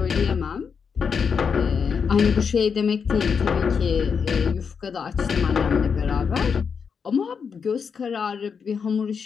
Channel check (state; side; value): quieter; right; 6.2 dB